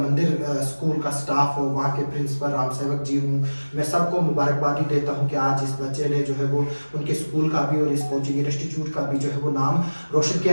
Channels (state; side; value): inverted; both; correlation -1.00